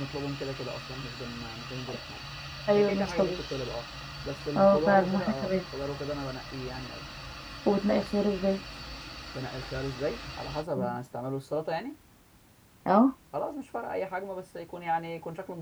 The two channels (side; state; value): both; identical; correlation 1.00